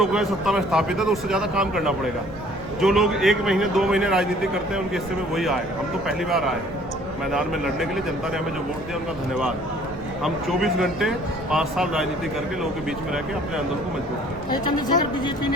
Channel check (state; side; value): noise; right; rumble, 17 dB below the sound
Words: है सत्ता में स्थापित है तो उससे ज़्यादा काम करना पड़ेगा। जो लोग 1 महीने 2 महीने राजनीति करते हैं उनके हिस्से में वही आए। हम तो पहली बार आए मैदान में लड़ने के लिए। जनता ने हमें जो वोट दिया उनका धन्यवाद। हम 24 घंटे 5 साल राजनीति करके लोगों के बीच में रह के अपने आंदोलन को मजबूत किया। चंद्रशेखर, बीजेपी